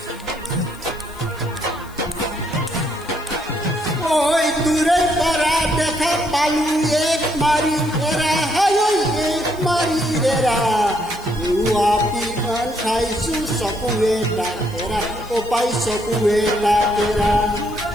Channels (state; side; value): noise; left; hiss, 23 dB below the sound